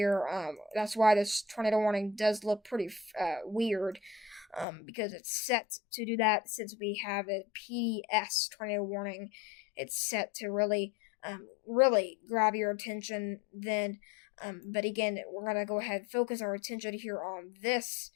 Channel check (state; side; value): drops out; right; at 4.7 s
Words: That's why this tornado warning does look pretty weird. Because it's set to do that since we have a PDS tornado warning. It's set to really really grab your attention then. But again, we're going to go ahead and focus our attention here on this.